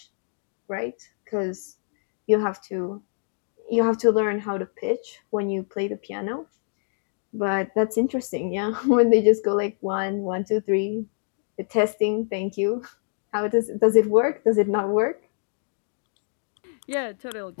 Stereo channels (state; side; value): silent; right; 61 dB below the other